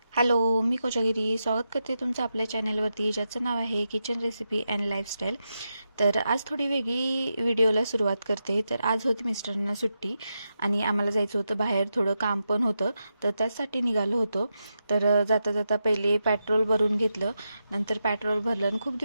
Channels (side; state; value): both; inverted; correlation -0.87